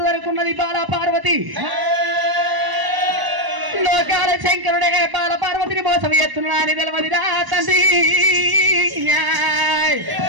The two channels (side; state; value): left; late; 1.0 ms